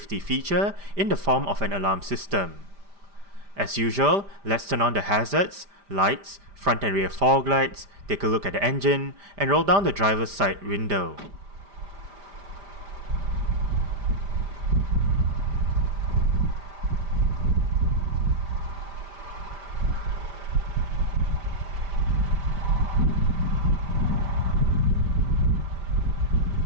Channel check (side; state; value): left; late; 5.0 ms